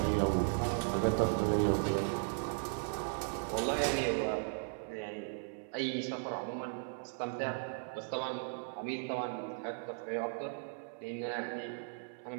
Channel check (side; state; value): left; silent; 53 dB below the other